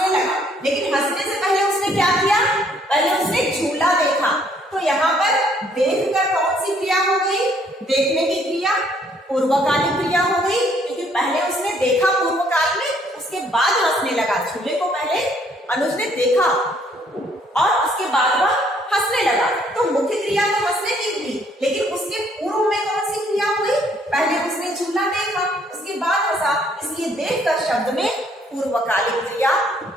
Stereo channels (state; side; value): normal; both; correlation 0.65